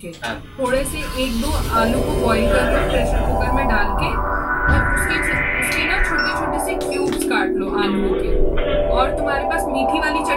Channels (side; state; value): both; identical; correlation 1.00